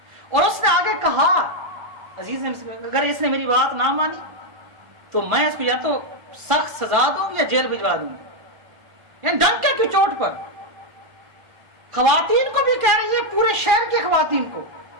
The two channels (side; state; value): left; late; 1.5 ms